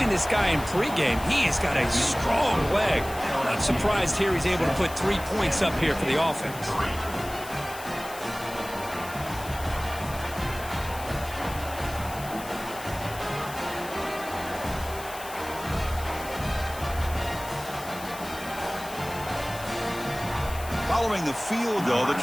this guy in pregame. He has got a strong leg. Not surprised here he's able to put 3 points up here for the offense. Following the field goal, the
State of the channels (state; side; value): noise; left; hiss, 14 dB below the sound